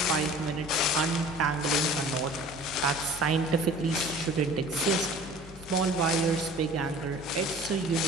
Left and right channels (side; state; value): both; normal; correlation 0.45